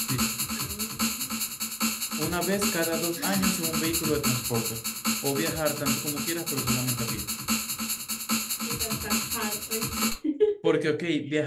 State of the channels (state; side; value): identical; both; correlation 1.00